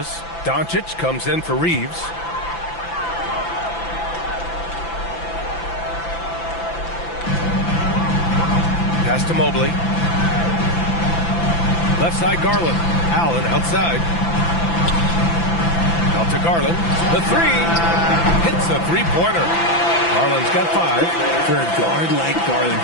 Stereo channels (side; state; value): right; late; 5.9 ms